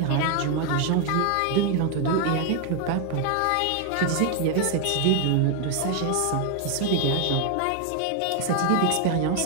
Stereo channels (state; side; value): different; both; correlation 0.01